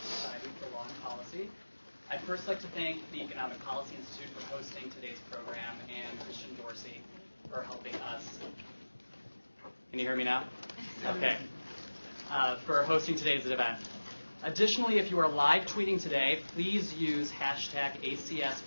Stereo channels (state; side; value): inverted; both; correlation -1.00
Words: Society for Law and Policy. I'd first like to thank the Economic Policy Institute for hosting today's program and Christian Dorsey for helping us. Can you hear me now? Okay. For hosting today's event. Additionally, if you are live tweeting today, please use hashtag